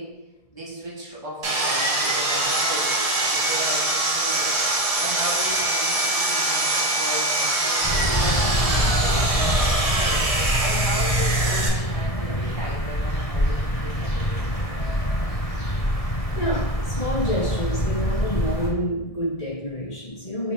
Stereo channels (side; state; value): right; late; 1.6 ms